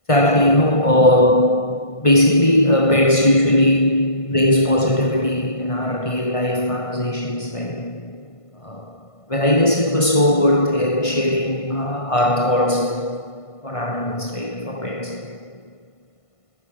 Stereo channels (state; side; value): late; right; 1.5 ms